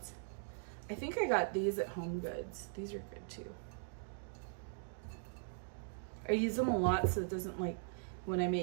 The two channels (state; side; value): silent; left; digital silence